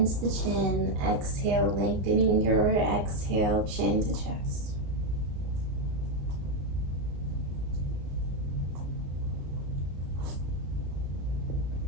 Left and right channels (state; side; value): late; left; 34 ms